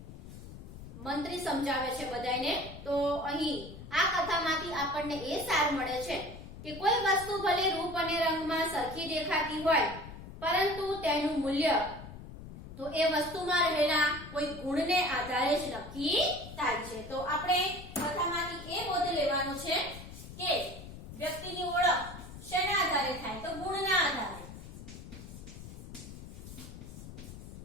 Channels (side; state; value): left; noise; rumble, 13 dB below the sound